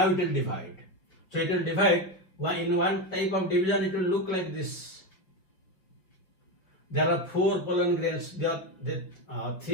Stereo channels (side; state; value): right; late; 5.4 ms